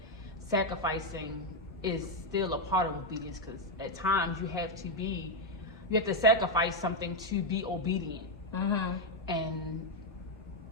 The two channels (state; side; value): normal; both; correlation 0.04